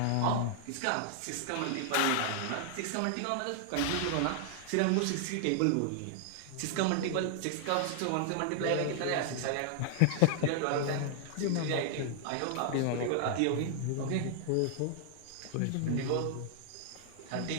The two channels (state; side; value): different; both; correlation -0.01